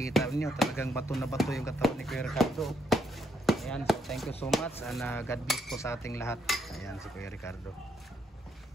niyo, talagang bato na bato yung katawan ni Kuya Ricardo. Ayan, so thank you so much and God bless po sa ating lahat. Ayan si Kuya Ricardo.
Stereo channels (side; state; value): both; normal; correlation 0.75